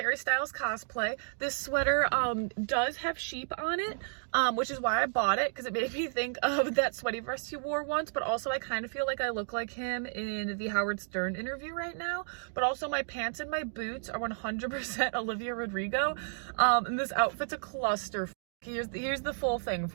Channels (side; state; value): left; silent; digital silence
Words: Styles cosplay. This sweater does have sheep on it, which is why I bought it, because it made me think of that sweaty vest he wore once, but also I kind of feel like I look like him in the Howard Stern interview right now. But also my pants and my boots are 100% Olivia Rodrigo, and this outfit's a cluster. Here's the full thing